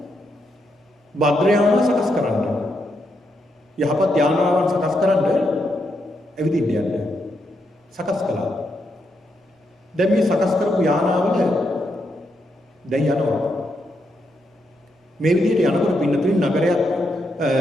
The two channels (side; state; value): both; normal; correlation 0.81